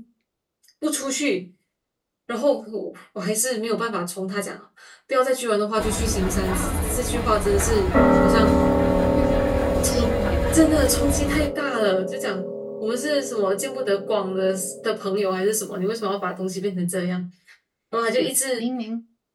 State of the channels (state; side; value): identical; both; correlation 1.00